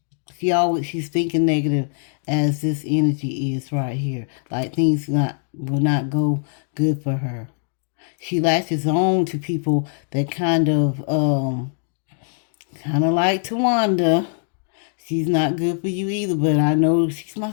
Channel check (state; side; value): silent; right; digital silence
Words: She's thinking negative as this energy is right here. Like things will not go good for her. She latches on to people that kind of like Tawanda. She's not good for you either, but I know she's my